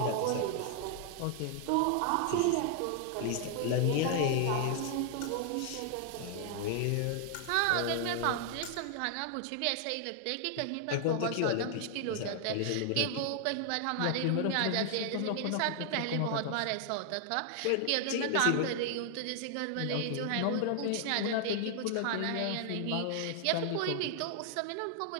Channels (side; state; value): both; different; correlation 0.00